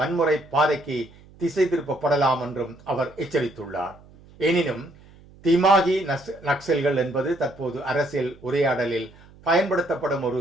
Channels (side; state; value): right; noise; hum, 24 dB below the sound